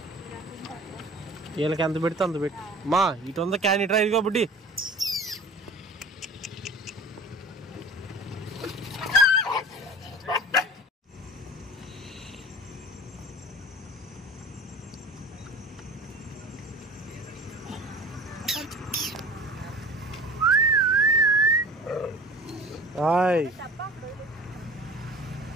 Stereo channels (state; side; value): normal; both; correlation 0.41